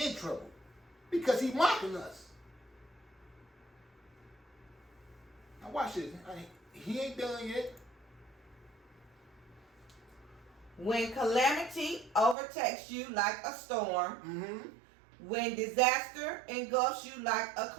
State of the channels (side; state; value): left; drops out; at 12.4 s